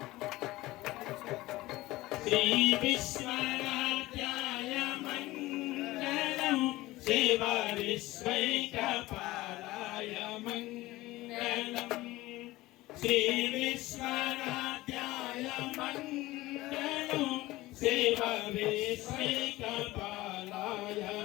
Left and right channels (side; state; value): right; quieter; 18.5 dB